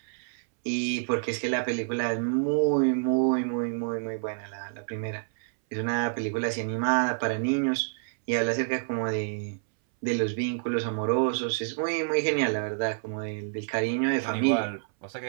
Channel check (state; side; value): silent; left; 59 dB below the other